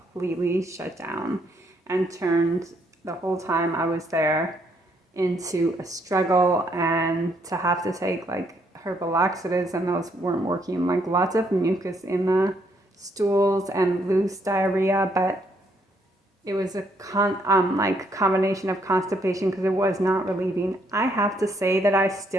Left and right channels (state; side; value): normal; both; correlation 0.71